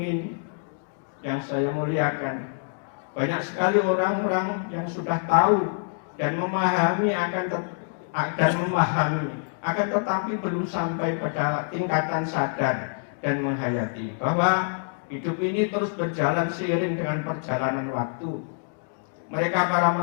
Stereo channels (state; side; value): silent; right; digital silence